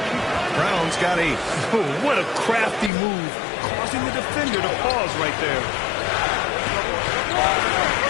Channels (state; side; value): drops out; right; at 2.9 s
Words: Brown's got 8. Oh, what a crafty move, causing the defender to pause right there.